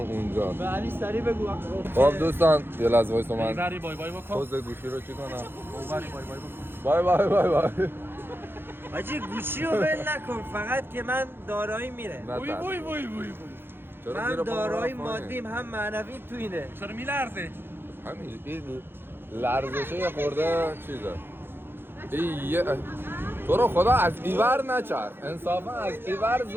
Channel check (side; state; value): left; late; 0.10 ms